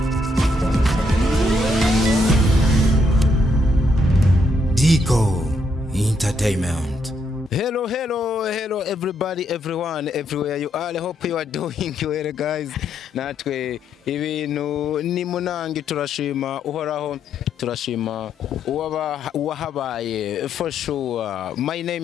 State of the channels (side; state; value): both; normal; correlation 0.76